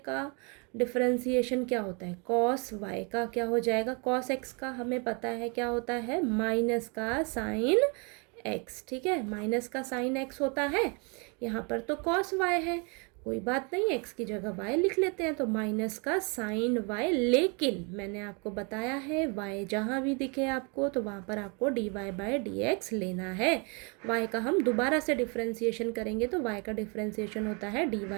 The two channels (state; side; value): quieter; left; 33.2 dB